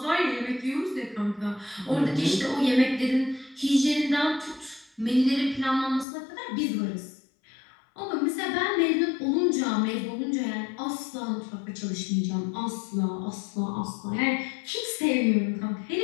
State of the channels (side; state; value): right; drops out; at 6.1 s